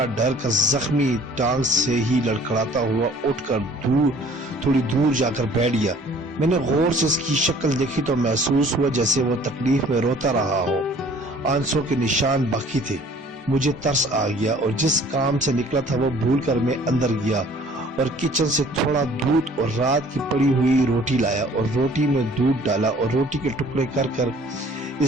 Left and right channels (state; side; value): normal; both; correlation 0.53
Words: ڈر کر زخمی ٹانگ سے ہی لڑکھڑاتا ہوا اٹھ کر تھوڑی دور جا کر بیٹھ گیا۔ میں نے غور سے اس کی شکل دیکھی تو محسوس ہوا جیسے وہ تکلیف میں روتا رہا ہو، آنسوں کے نشان باقی تھے۔ مجھے ترس آ گیا اور جس کام سے نکلا تھا وہ بھول کر میں اندر گیا اور کچن سے تھوڑا دودھ اور رات کی پڑی ہوئی روٹی لایا اور روٹی میں دودھ ڈالا اور روٹی کے ٹکڑے کر کر